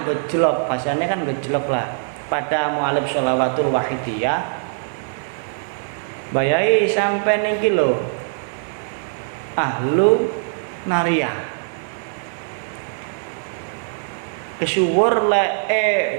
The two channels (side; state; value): left; silent; digital silence